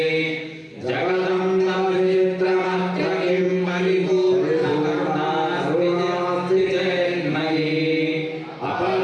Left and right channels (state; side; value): identical; both; correlation 1.00